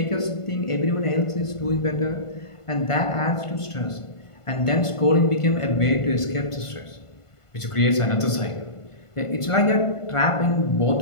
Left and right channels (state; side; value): late; right; 1.5 ms